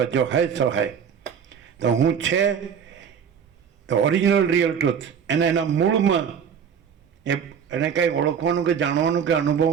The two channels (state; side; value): quieter; left; 7.6 dB